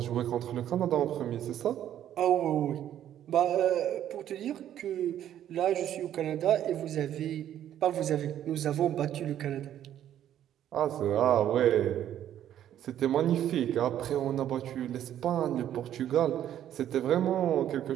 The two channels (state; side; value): quieter; left; 11.1 dB